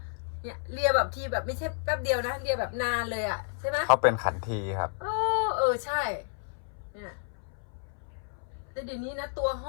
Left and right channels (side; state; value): right; silent; 57 dB below the other